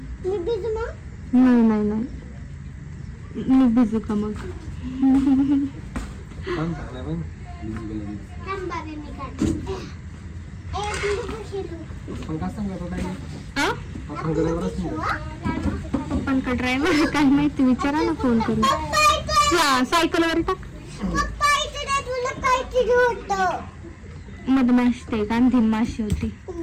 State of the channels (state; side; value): identical; both; correlation 1.00